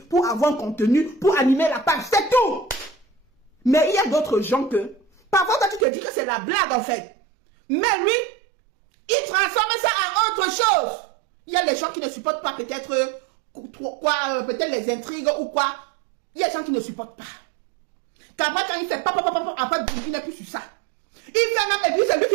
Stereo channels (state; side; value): drops out; left; at 5.9 s